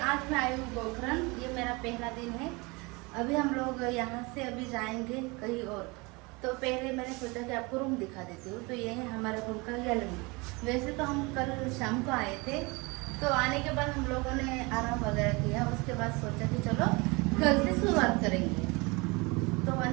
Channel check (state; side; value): quieter; left; 26.5 dB